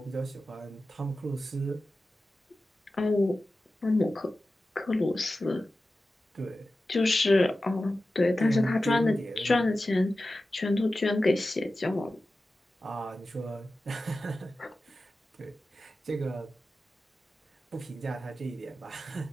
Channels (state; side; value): normal; both; correlation 0.94